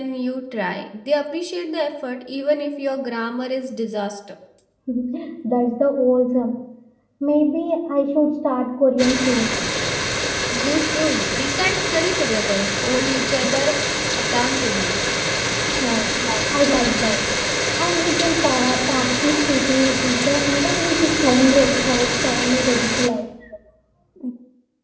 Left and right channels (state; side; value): identical; both; correlation 1.00